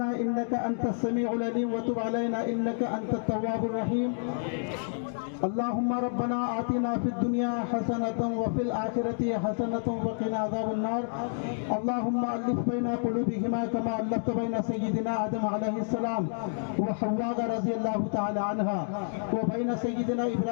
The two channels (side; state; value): right; silent; digital silence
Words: इन्नका अंतस समीउल अलीम व तुब अलैना इन्नका अंतत तव्वाबुर रहीम अल्लाहुम्मा रब्बना आतिना फिद दुनिया हसनतन व फिल आखिरति हसनतन व क़िना अज़ाबन नार अल्लाहुम्मा अलिफ बैना क़ुलूबिहिमा कमा अल्लफ़्त बैना सय्यिदिना आदम अलैहिस्सलाम व हव्वा रज़ियल्लाहु तआला अन्हा व बैना सय्यिदिना